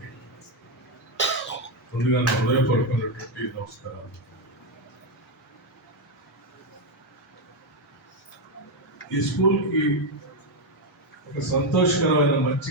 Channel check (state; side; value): normal; both; correlation 0.05